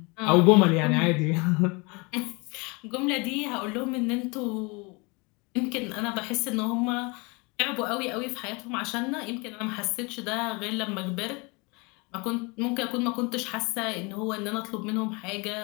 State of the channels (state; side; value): quieter; right; 28.6 dB